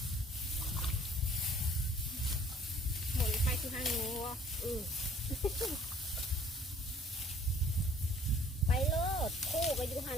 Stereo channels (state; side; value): normal; both; correlation 0.56